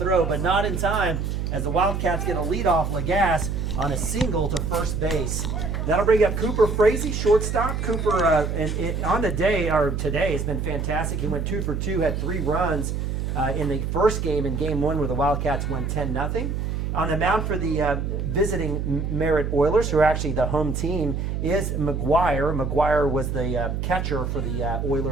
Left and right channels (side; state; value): right; noise; hum, 2 dB below the sound